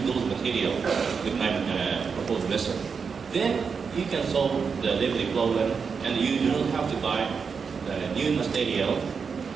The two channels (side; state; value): left; quieter; 5.7 dB